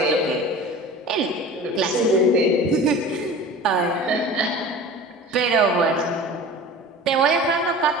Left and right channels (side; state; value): both; normal; correlation 0.38